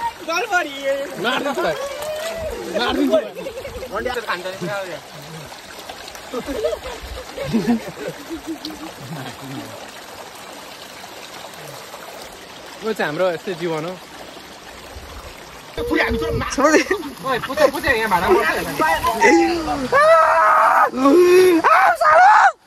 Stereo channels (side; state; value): both; identical; correlation 1.00